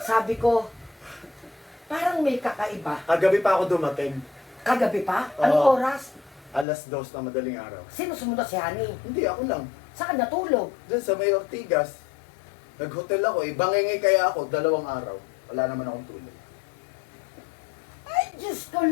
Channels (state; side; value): drops out; right; at 6.7 s